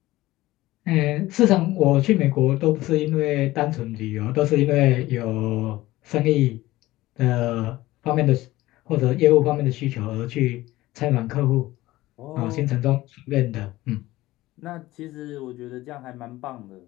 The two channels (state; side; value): quieter; right; 17.5 dB